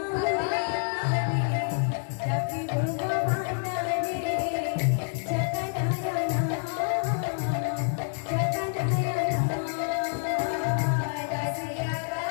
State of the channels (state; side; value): silent; right; digital silence